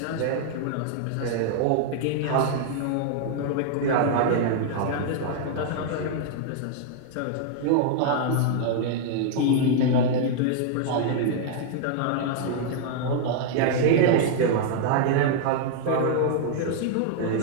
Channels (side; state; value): both; different; correlation -0.01